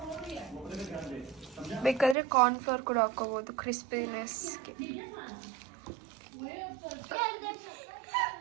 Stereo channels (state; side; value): drops out; left; at 2.1 s